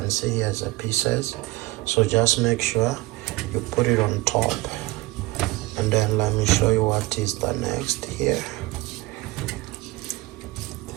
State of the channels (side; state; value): left; quieter; 20.8 dB